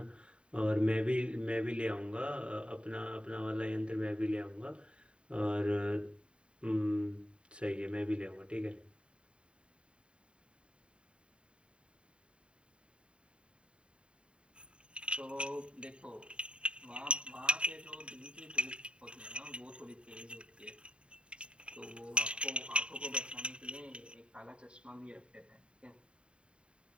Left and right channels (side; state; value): left; late; 0.055 ms